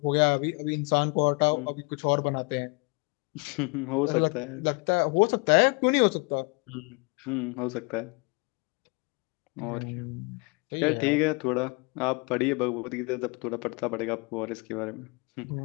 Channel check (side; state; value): right; quieter; 30.5 dB